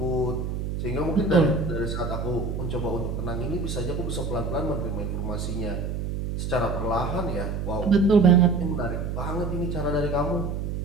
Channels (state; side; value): noise; right; hum, 3 dB below the sound